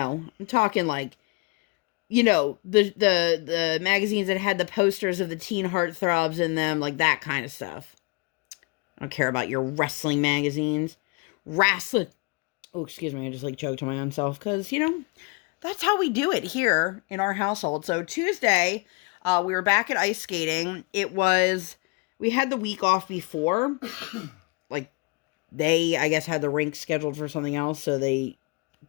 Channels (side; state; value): right; quieter; 29.3 dB